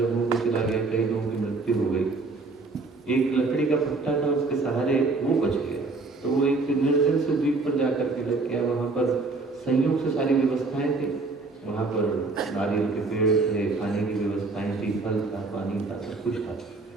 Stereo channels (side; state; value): left; quieter; 3.7 dB